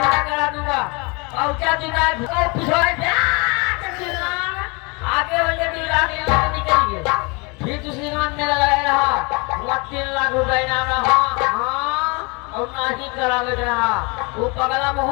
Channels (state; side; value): quieter; right; 29.2 dB